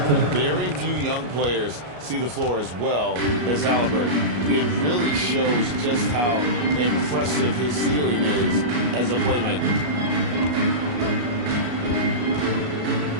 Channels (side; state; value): left; late; 33 ms